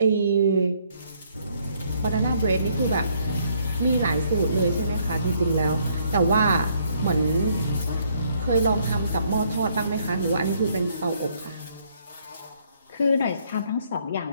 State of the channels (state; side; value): inverted; both; correlation -0.68